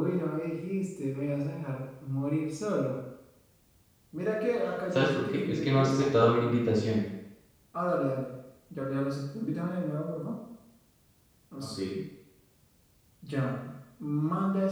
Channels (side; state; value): both; identical; correlation 1.00